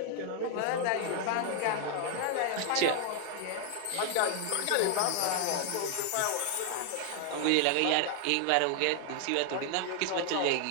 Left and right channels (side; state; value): both; different; correlation 0.00